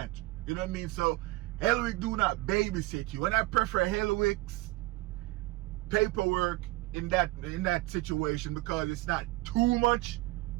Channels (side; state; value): left; quieter; 20.3 dB